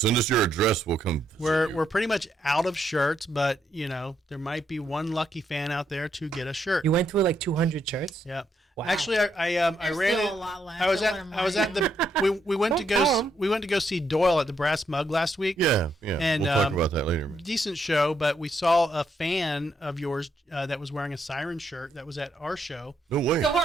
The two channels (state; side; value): normal; both; correlation 0.76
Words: us your address. We'll come. visit you. We're pretty much out of shirts, but there might be one lucky fan out there to get a shirt. You went through like 200 shirts? Yeah. Wow. Actually, I There's ran still it. a lot left. I was Don't at let 'em I was lie. at the we went to Don't tell 'em. go see Doyle at the Brass Mug last week. Yeah. And, we'll talk about that later, man. Decent show, but we saw a fan of yours that was wearing a Siren shirt that was at our show. No way. So, hold